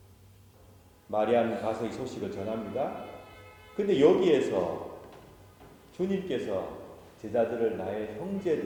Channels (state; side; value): identical; both; correlation 1.00